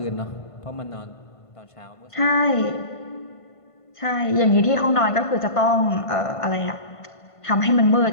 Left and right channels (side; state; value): right; late; 1.5 ms